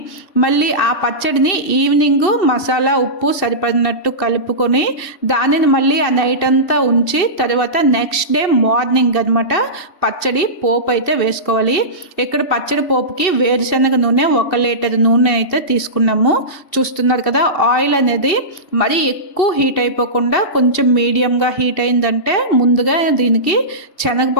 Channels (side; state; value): right; late; 2.7 ms